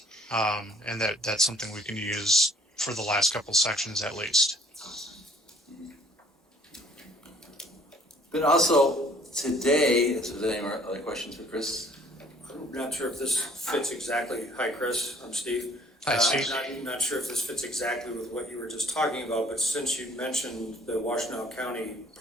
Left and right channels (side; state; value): both; normal; correlation 0.57